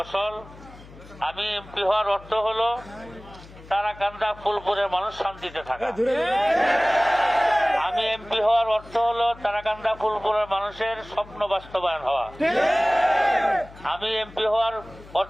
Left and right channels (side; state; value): left; noise; hum, 20 dB below the sound